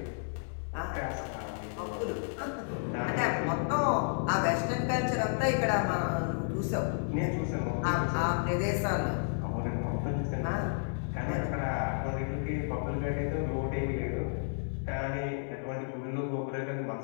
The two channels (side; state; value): right; silent; 56 dB below the other